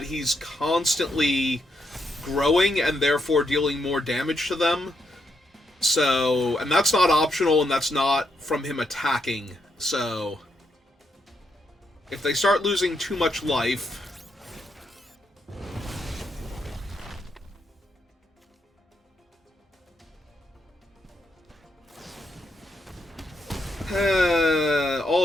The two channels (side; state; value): both; normal; correlation 0.79